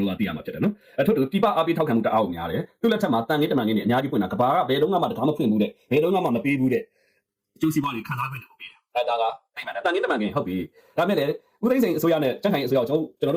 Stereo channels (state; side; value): identical; both; correlation 1.00